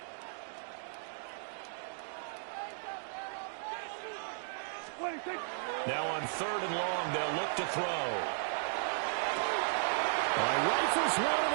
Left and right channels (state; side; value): silent; left; digital silence